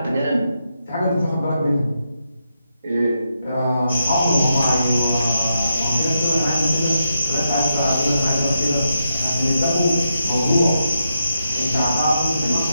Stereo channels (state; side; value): inverted; both; correlation -0.84